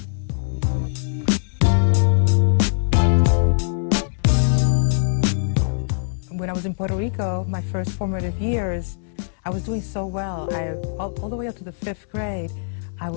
When I was in Puerto Rico, my first formative years, I was doing so well. All the way up to the 5th grade, I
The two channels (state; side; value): silent; right; 64 dB below the other